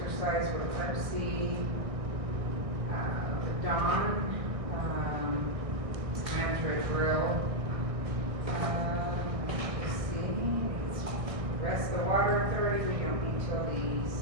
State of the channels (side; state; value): left; late; 1.6 ms